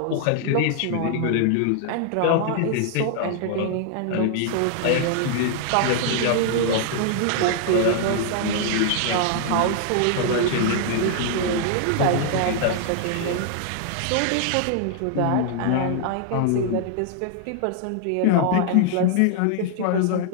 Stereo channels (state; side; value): different; both; correlation 0.00